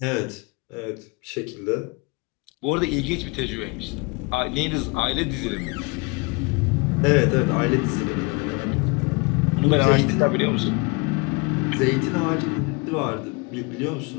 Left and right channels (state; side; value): quieter; right; 27.6 dB